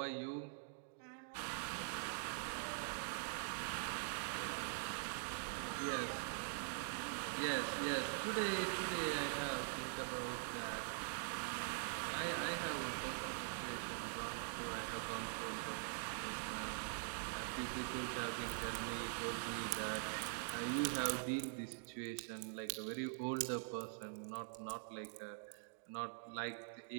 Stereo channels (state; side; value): silent; left; digital silence